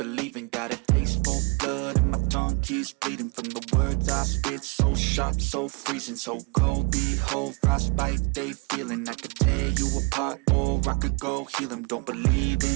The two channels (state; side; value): quieter; left; 30.2 dB